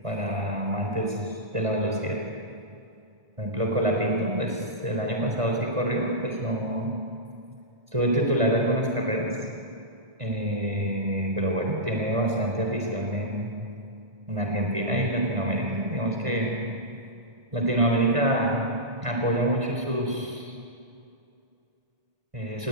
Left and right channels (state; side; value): late; left; 1.5 ms